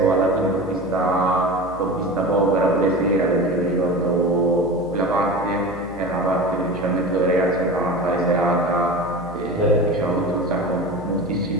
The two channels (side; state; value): left; noise; hum, 17 dB below the sound